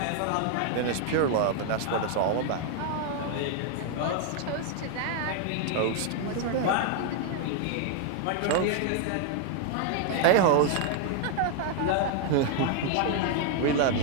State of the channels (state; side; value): different; both; correlation 0.00